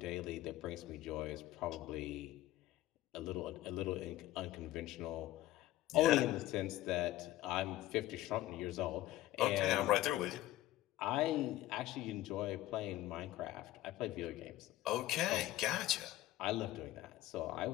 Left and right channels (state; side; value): quieter; right; 15.2 dB